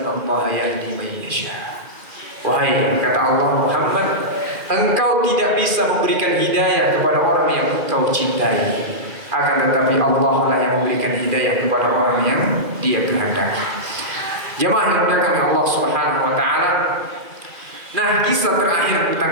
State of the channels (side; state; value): left; late; 2.5 ms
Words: Allah yahdi man yasha. Wahai, kata Allah, Muhammad, engkau tidak bisa memberikan hidayah kepada orang yang engkau cintai. Akan tetapi Allah lah yang memberikan hidayah kepada orang yang Dia kehendaki. Jemaah yang dimuliakan Allah Subhanahu wa taala. Nah, kisah terakhir